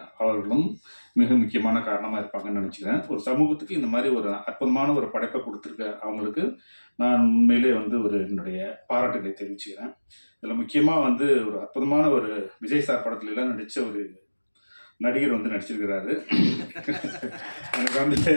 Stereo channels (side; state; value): both; inverted; correlation -1.00